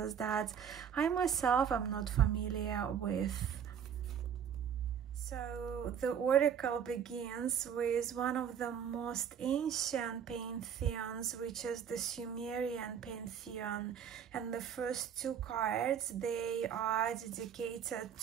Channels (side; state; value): left; quieter; 8.2 dB